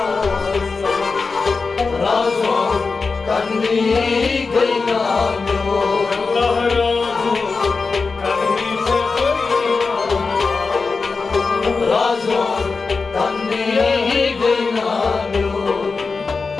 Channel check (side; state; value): right; quieter; 4.4 dB